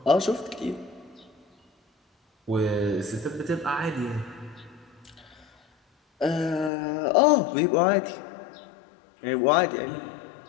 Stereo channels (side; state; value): right; drops out; at 6.7 s